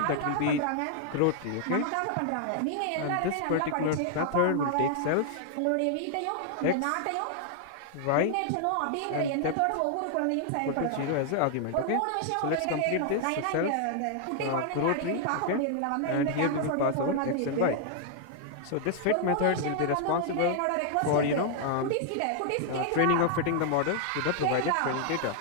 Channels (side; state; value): both; different; correlation 0.00